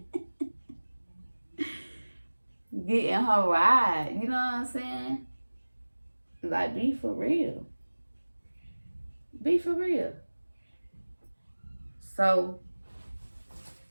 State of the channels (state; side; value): inverted; both; correlation -1.00